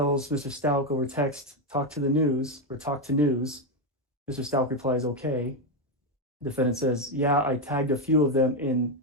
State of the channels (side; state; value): both; normal; correlation 0.07